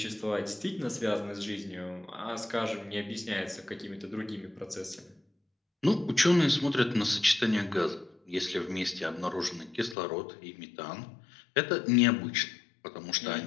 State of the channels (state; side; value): drops out; right; at 10.0 s